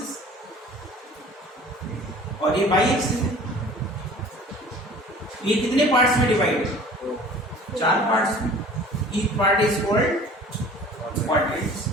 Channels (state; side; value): normal; both; correlation 0.46